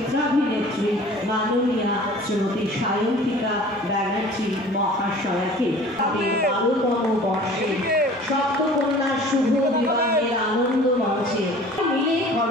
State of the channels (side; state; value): both; normal; correlation 0.45